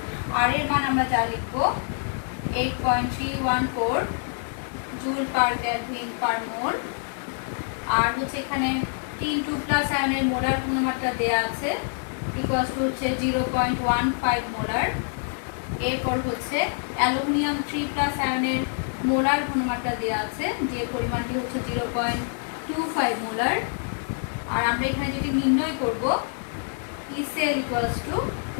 আর এর মান আমরা যা লিখবো 8.314 জুল পার কেলভিন পার মোল। আর হচ্ছে এখানে 3 আয়নের মোলার ঘনমাত্রা দেয়া আছে, হচ্ছে 0.15 মোলার। এরপর হচ্ছে অ্যালুমিনিয়াম 3+ আয়নের মোলার ঘনমাত্রা দেওয়া আছে, যে পরিমাণটি হচ্ছে 0.25 মোলার। আর আমরা এখানে যদি নির্ণয় করব ইসেল =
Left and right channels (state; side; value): silent; right; 61 dB below the other